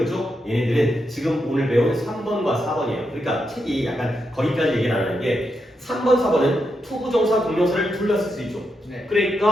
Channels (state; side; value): normal; both; correlation 0.84